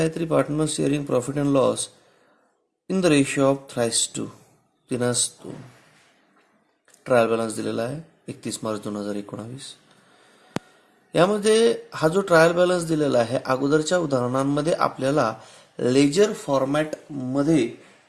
partners sharing profit and loss in the ratio of 3:2. 3:2. Trial balance दिलेला आहे 31 मार्च 2019. यामध्ये हा जो ट्रायल बॅलन्स दिलेला आहे अगोदरच्या उदाहरणांमध्ये आपल्याला लेजर फॉर्मॅट मध्ये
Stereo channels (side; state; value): both; identical; correlation 1.00